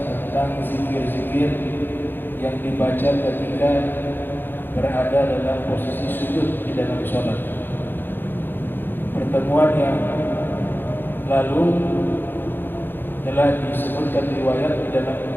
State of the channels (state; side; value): late; right; 0.098 ms